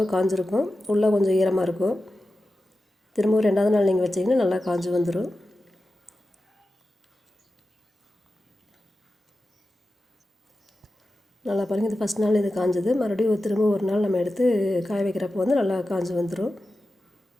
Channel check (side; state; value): both; normal; correlation 0.93